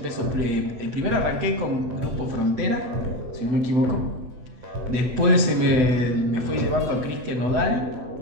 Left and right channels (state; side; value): late; left; 8.0 ms